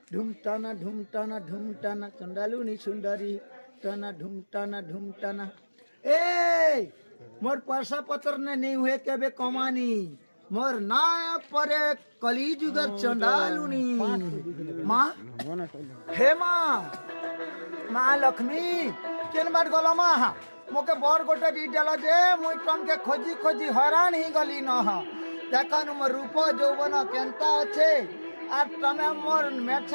ढूंढताना ढूंढताना ढूंढताना चंडालुनी सुंदरी टाना ढूंढताना ढूंढताना ए मोर पैसा पत्र ने नहीं हुए केबे कमानी मोर ना परे कलिजुगर चंडालुनी माँ हे माँ लक्ष्मी केन बार गल माँ मोके बर गोटे दी देल जे मुई तुम के खोजी खोजी हैरान ही गली न देखन मोर रूप यौवन केनता अच्छे और तमे मोर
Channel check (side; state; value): both; inverted; correlation -1.00